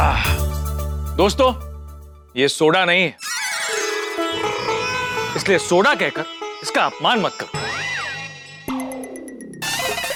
दोस्तों, ये सोडा नहीं है, इसलिए सोडा कहकर इसका अपमान मत करो।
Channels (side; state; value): both; identical; correlation 1.00